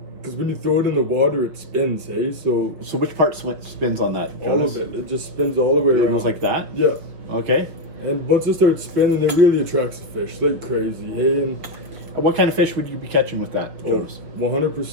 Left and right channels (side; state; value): left; late; 6.2 ms